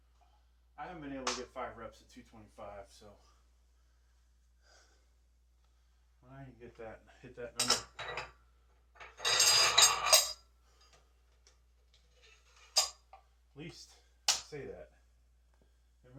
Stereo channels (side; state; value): both; identical; correlation 1.00